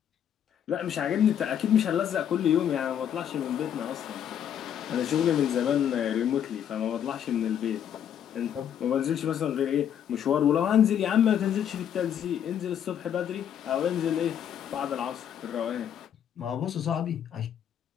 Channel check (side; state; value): right; quieter; 9.3 dB